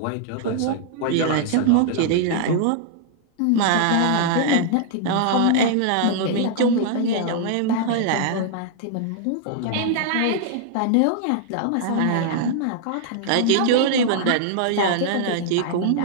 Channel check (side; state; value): both; different; correlation -0.01